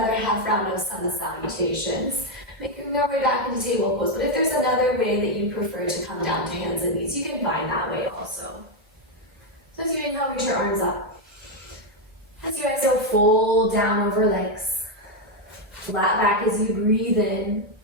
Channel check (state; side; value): normal; both; correlation 0.03